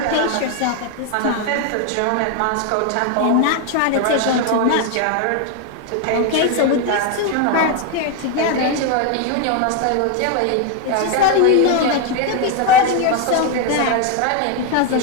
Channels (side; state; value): both; different; correlation 0.01